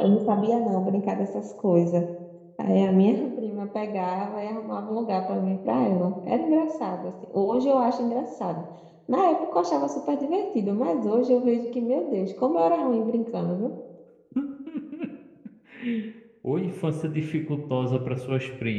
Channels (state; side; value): identical; both; correlation 1.00